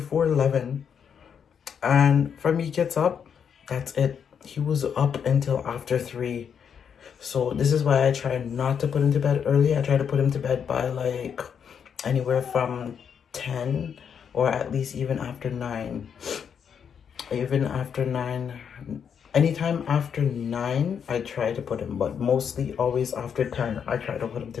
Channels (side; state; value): right; quieter; 7.4 dB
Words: and from he gets up, that's it. He was up until after 3. So this is why I try not to put him to bed early. I try to put him to bed by like anywhere from 10 or at least even after 9. Even after 9. Anytime after 9, I try to put him. But mostly always after 10, I try to put him to